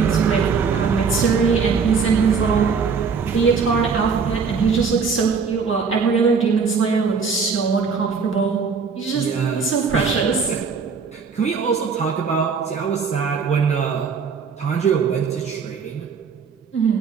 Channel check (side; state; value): left; quieter; 5.6 dB